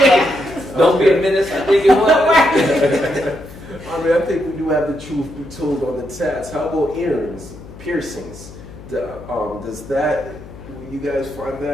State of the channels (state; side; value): noise; left; hum, 17 dB below the sound